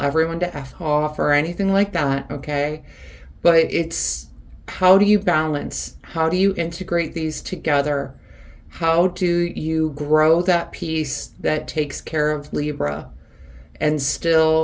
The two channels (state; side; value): identical; both; correlation 1.00